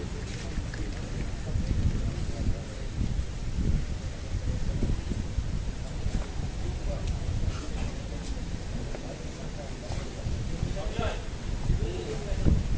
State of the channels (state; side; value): identical; both; correlation 1.00